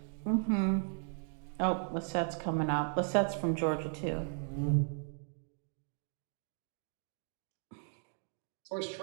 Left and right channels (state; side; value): silent; left; 54 dB below the other